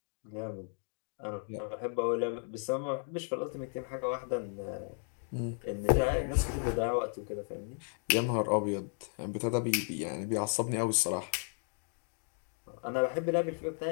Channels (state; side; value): silent; right; 55 dB below the other